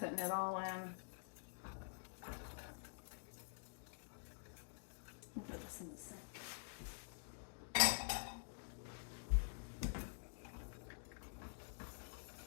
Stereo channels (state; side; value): silent; right; digital silence